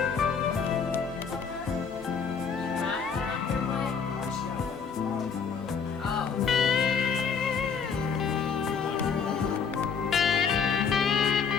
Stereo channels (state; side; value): quieter; right; 6.1 dB